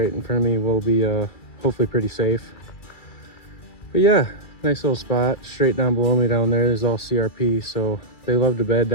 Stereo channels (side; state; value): right; late; 2.3 ms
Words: in front of me will be hopefully pretty safe. But yeah, nice little spot straight down below me down there is all CRP, so they love to bed